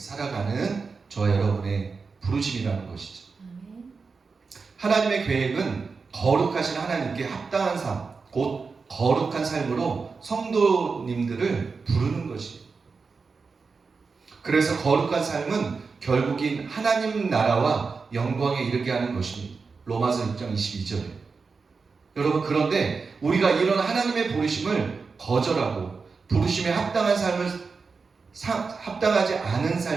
저와 여러분의 부르심이라는 것이죠. 하나님의 계획은 거룩하신 하나님께 합당한 삶, 곧 거룩한 삶으로 성도님들을 부르는 것이에요. 그래서 거룩한 삶은 결국인 하나님 나라와 영광에 이르게 하는 것입니다. 로마서 6장 22절에. 여러분, 그런데 우리가 이런 하나님의 부르심을 거절하고 부르심에 합당한 삶을 합당하지 않은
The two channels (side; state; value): left; quieter; 4.7 dB